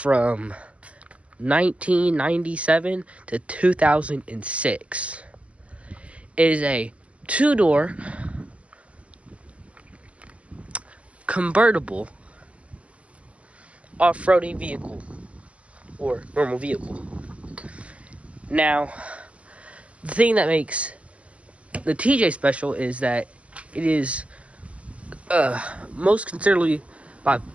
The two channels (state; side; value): late; left; 0.063 ms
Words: 1997 to 2006. It is a two-door convertible off-roading vehicle or normal vehicle. Now, the thing that makes the TJ special is that it is most considerably